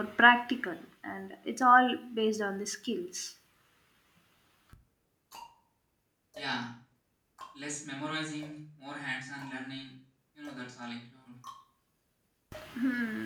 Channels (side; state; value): both; identical; correlation 1.00